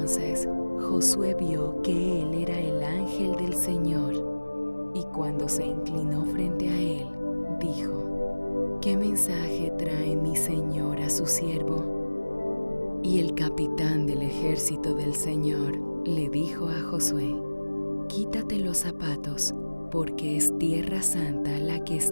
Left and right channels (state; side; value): inverted; both; correlation -1.00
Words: Josué vio que él era el ángel del Señor, y cuando se inclinó frente a él, dijo: ¿Qué mensaje trae mi Señor a su siervo? Y el capitán del ejército del Señor le dijo a Josué: Quítate los zapatos, porque es tierra santa la que